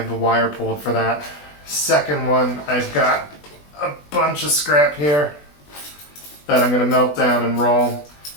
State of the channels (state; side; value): late; right; 20 ms